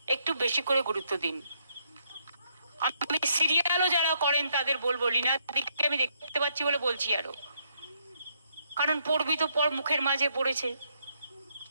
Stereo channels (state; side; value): inverted; both; correlation -0.73